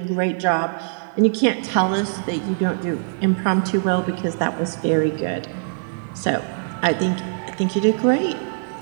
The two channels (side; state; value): left; silent; digital silence